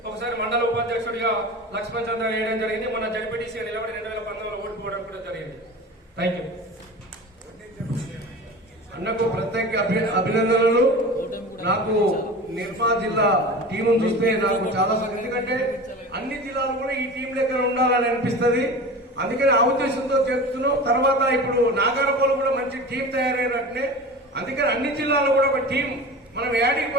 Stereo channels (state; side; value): normal; both; correlation 0.33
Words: ఒకసారి మండల ఉపాధ్యక్షుడిగా లక్ష్మణ్ చంద్ర వేయడం జరిగింది. మన జడ్పీటీసీగా నిలబడి 2019లో ఓడిపోవడం కూడా జరిగింది. Thank you. అన్నకు ప్రత్యేక అభినందనలు. నాకు నిర్మా జిల్లా టీమును చూస్తే నాకు చాలా ఎందుకంటే అన్ని జిల్లాలు కూడా ఈ టీం దగ్గర ఉండాలని అనిపిస్తుంది. అందుకని ఆ ఉద్దేశంతో చెప్తున్నాం. తర్వాత ఇప్పుడు నాగారపోలు కూడా మంచి టీం తయారైనట్టే. అందుకని అన్ని జిల్లాలో కూడా ఒక టీం మనం యాడికి